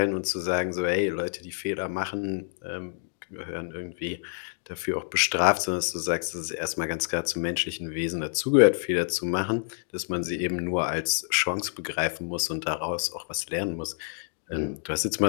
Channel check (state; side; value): silent; right; digital silence